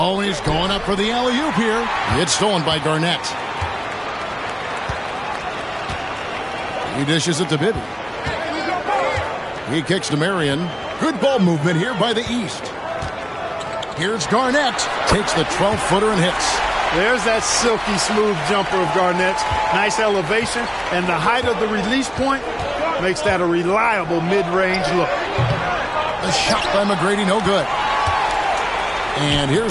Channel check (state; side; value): identical; both; correlation 1.00